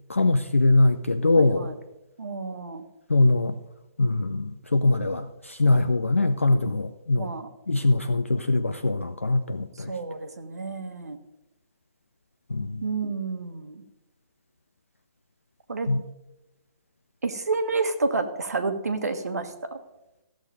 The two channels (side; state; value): both; inverted; correlation -0.89